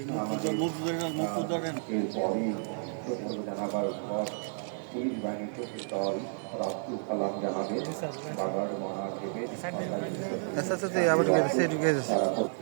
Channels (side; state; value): left; silent; 57 dB below the other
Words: এরপরই জানাবার পর পুলিশ বাহিনীর চোখের দল রাস্তুল কালাম জানাবে বাগার মনার দেবে